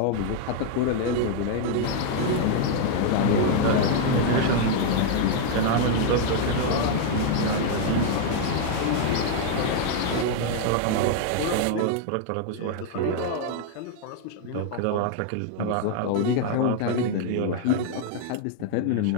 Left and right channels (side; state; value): both; different; correlation 0.00